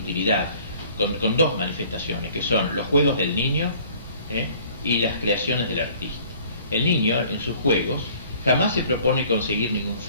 con dos manifestaciones, que son los juegos del niño y las creaciones del artista. El niño, en sus juegos, jamás se propone conseguir ningún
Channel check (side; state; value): both; inverted; correlation -0.54